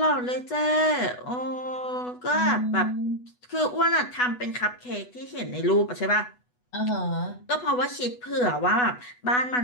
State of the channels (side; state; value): right; late; 8.1 ms